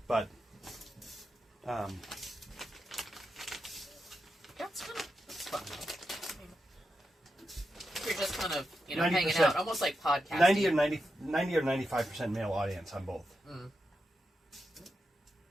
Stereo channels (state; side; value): normal; both; correlation 0.87